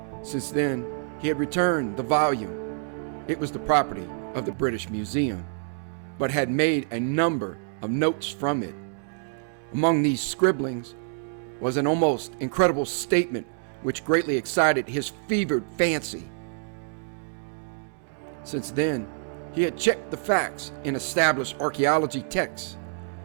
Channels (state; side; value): silent; left; 60 dB below the other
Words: Since then, he had returned the volume. It was the property of the British Museum, but had made a number of notes from it. Among these scribblings was an almost incredible statement which greatly excited his fevered fancy. Since then, he had checked the facts in established archaeology texts